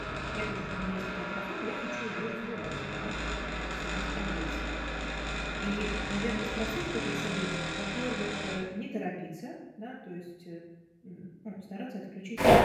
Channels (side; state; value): both; identical; correlation 1.00